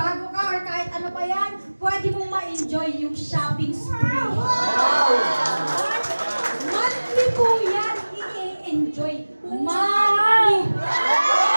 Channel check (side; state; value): both; inverted; correlation -1.00